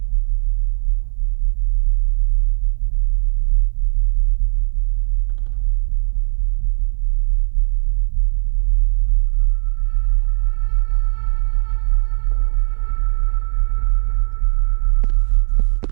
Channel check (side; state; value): left; silent; 58 dB below the other